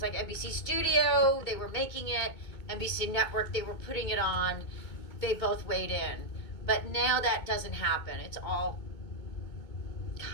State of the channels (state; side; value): late; right; 2.2 ms